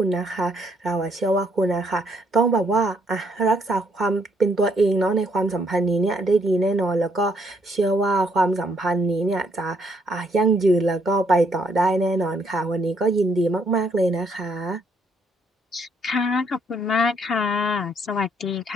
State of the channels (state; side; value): normal; both; correlation 0.70